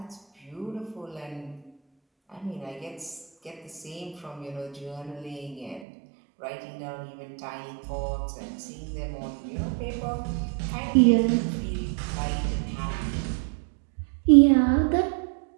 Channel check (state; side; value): drops out; left; at 5.8 s